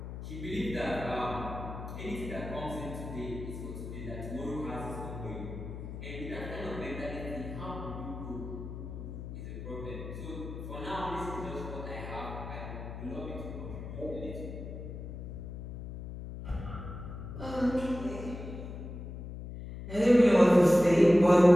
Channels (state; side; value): noise; left; hum, 9 dB below the sound